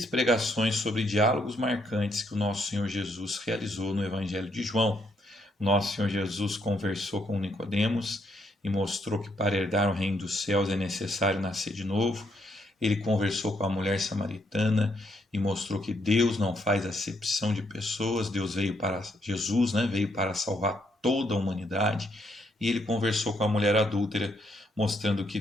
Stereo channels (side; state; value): both; normal; correlation 0.74